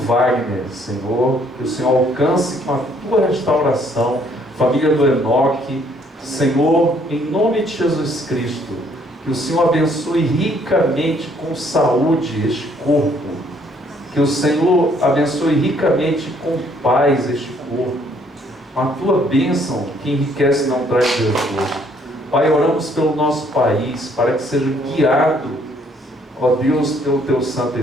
Senhor, que o Senhor alcance com a tua restauração, família do Enoque, Senhor, em nome de Jesus Cristo, que o Senhor abençoe ricamente com saúde este corpo, que o Senhor abençoe ricamente com paz este corpo, com a tua bênção que enriquece e não traz desgosto. Pai, oramos pelo nosso país, para que seja guiado, ó Deus, pelo teu Santo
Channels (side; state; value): both; normal; correlation 0.65